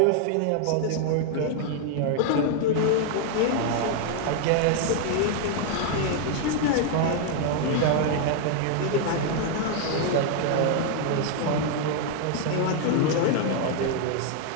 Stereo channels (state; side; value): different; both; correlation 0.00